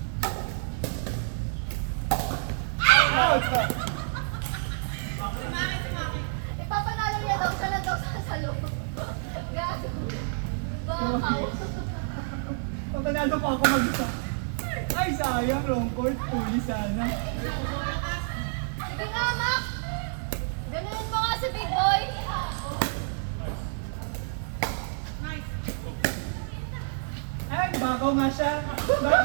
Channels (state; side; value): silent; left; digital silence